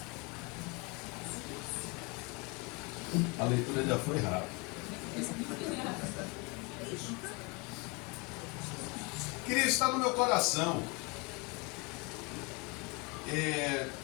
A leitura já foi rápida. Queria estar no meu coração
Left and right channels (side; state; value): right; quieter; 29.0 dB